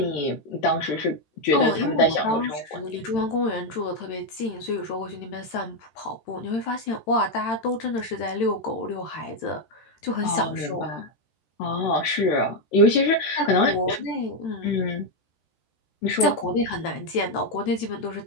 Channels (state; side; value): late; right; 13 ms